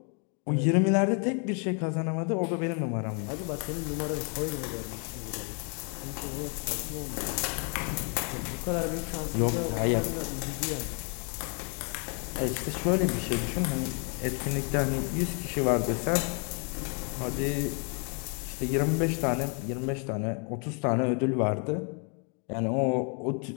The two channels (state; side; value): quieter; right; 38.5 dB